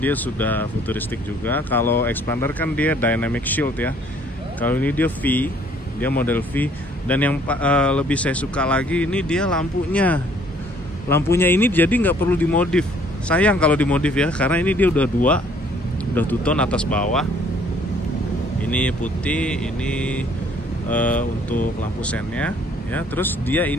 sudah futuristik juga. Kalau expander kan dia dynamic shield ya. Kalau ini dia V, dia model V. Dan yang lebih saya suka lagi ini dia lampunya. Lampunya ini jadi nggak perlu dimodif. Sayang kalau dimodif ya, karena ini dia udah two tone atas bawah. Ini putih, ini untuk lampu sennya ya. Terus dia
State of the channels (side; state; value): both; normal; correlation 0.60